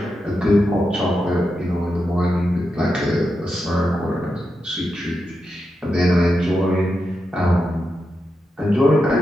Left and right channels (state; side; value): normal; both; correlation 0.87